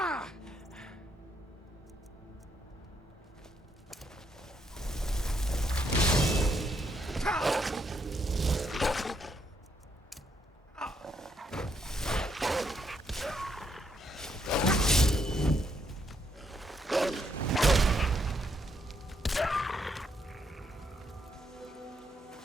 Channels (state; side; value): normal; both; correlation 0.75